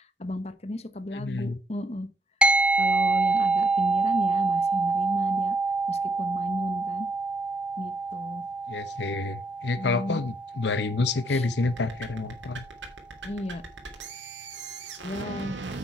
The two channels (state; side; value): normal; both; correlation 0.72